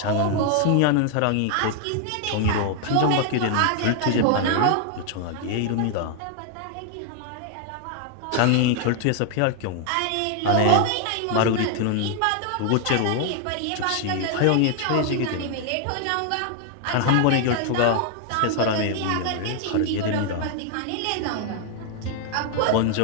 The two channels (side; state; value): both; different; correlation 0.00